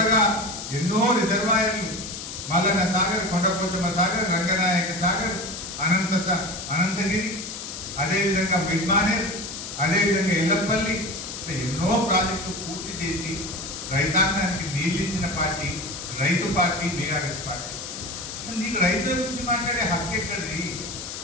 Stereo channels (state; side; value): noise; left; hiss, 8 dB below the sound